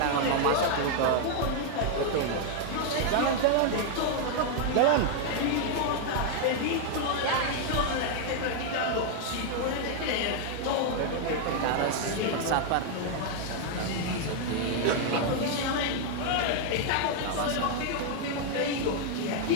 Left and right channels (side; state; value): both; different; correlation 0.00